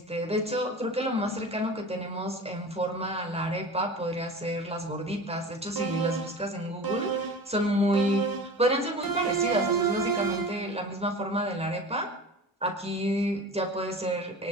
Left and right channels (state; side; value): normal; both; correlation 0.35